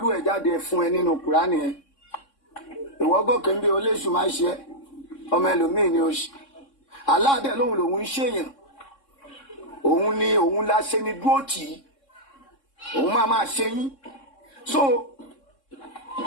ẹ̀ jáde fún ẹ nínú Kùránì yẹn ìwọ gòkè ń bí oléṣù máa ṣe ọmọ ẹlòmíì ni ó ṣe aláàdẹ lòun lòun ń ṣèyàn òun ni òun la ṣe ni dúró tì í òun máa ṣe yín so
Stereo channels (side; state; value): right; late; 3.6 ms